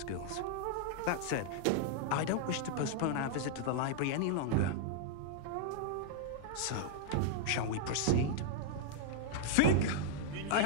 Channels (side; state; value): both; different; correlation -0.01